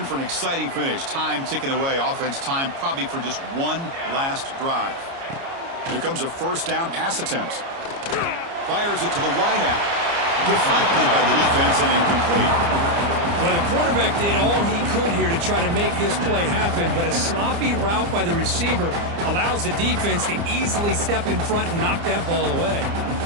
for an exciting finish. Time ticking away. Offense time probably for just one last drive. Here comes a first down pass attempt. Fires it to the wideout. Deflected by the defense and incomplete. Well, the quarterback did all he could here to try to make this play happen, but a sloppy route by the receiver allows the defense to easily step in front and knock that ball away.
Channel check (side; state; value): left; late; 29 ms